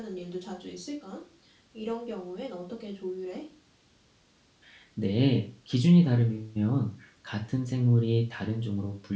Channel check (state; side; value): identical; both; correlation 1.00